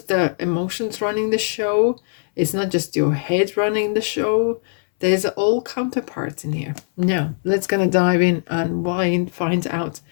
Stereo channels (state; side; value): silent; right; 65 dB below the other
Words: the emotions running the show. It's not just your head running the show. There's all counterparts in here. Now, let's gonna dive in and find out